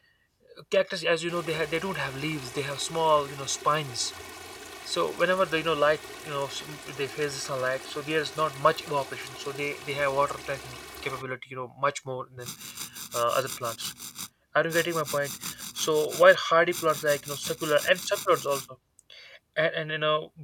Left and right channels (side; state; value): both; identical; correlation 1.00